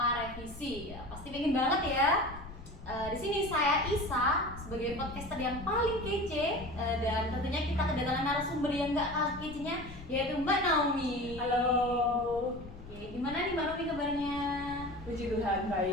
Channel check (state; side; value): noise; left; rumble, 14 dB below the sound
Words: revisi. Ya, pasti pengen banget ya. Di sini saya Isa sebagai podcaster yang paling kece, dan tentunya kita kedatangan narasumber yang gak kalah kecenya, yaitu Mbak Naomi. Halo. Oke, gimana nih Mbak Naomi kabarnya? Puji Tuhan,